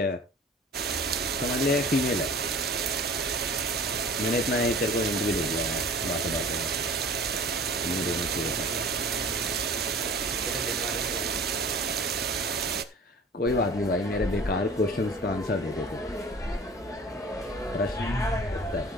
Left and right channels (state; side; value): normal; both; correlation 0.43